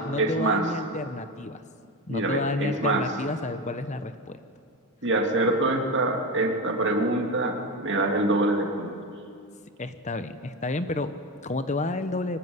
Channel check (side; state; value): both; normal; correlation 0.20